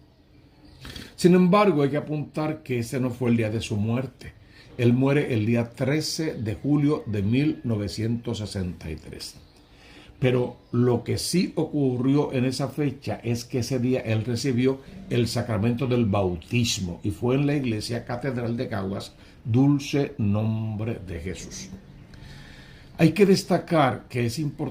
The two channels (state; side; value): identical; both; correlation 1.00